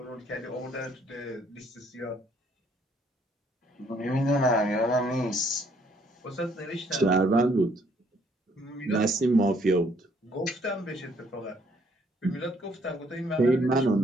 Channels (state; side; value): normal; both; correlation 0.66